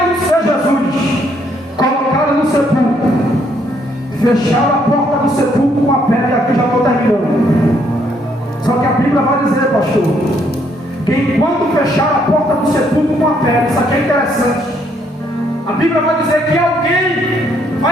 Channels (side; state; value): both; normal; correlation 0.70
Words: não ser Jesus, colocaram no sepulcro, fecharam a porta do sepulcro com a pedra. E aqui já estou terminando. Só que a Bíblia vai dizer, pastor, que enquanto fecharam a porta do sepulcro com a pedra, isso aqui é interessante. A Bíblia vai dizer que alguém